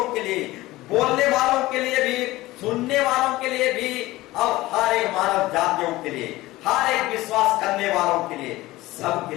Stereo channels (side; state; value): right; quieter; 18.2 dB